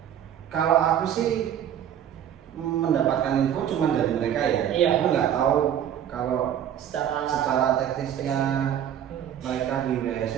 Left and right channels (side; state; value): left; quieter; 10.0 dB